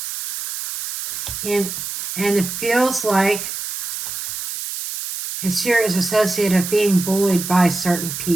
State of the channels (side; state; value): right; noise; hiss, 4 dB below the sound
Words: And it feels like his fear is associated with being bullied by certain